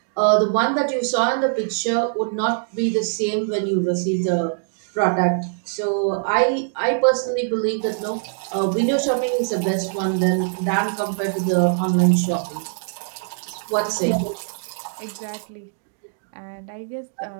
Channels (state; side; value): silent; left; digital silence